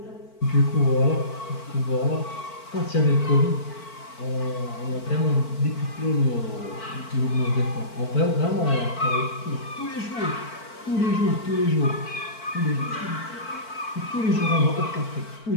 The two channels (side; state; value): right; late; 4.5 ms